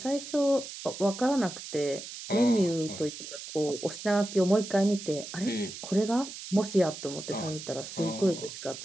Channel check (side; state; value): right; noise; hiss, 11 dB below the sound